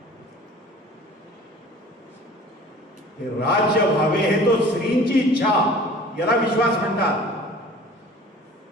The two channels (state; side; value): normal; both; correlation 0.45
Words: हे राज्य व्हावे हे तो श्रींची इच्छा, याला विश्वास म्हणतात.